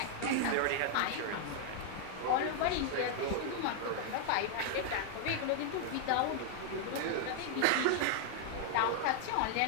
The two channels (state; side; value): different; both; correlation 0.00